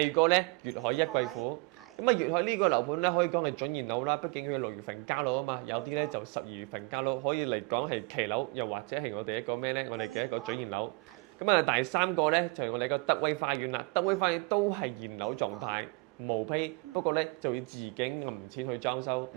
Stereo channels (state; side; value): quieter; left; 27.6 dB